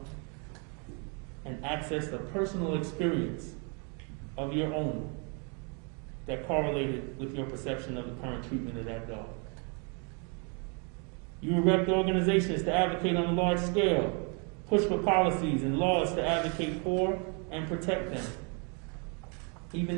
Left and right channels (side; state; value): left; quieter; 36.5 dB